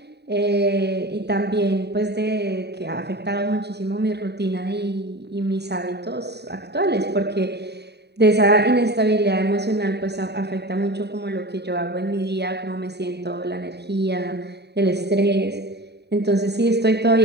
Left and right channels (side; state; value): left; late; 0.48 ms